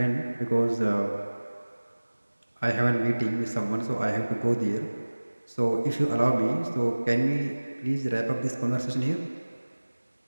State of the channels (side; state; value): both; inverted; correlation -1.00